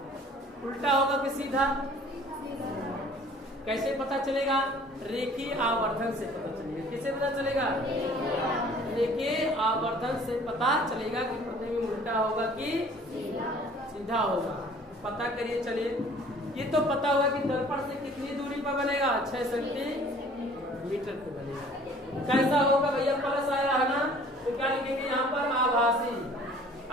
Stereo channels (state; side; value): normal; both; correlation 0.52